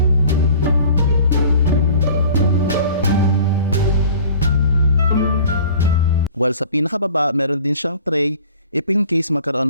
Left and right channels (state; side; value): inverted; both; correlation -0.47